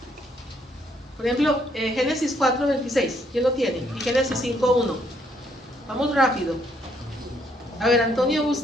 Por ejemplo, Génesis 4:26, ¿quién lo tiene? Y Génesis 5:1. Vamos rápido. A ver, Antonio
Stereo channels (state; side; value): normal; both; correlation 0.70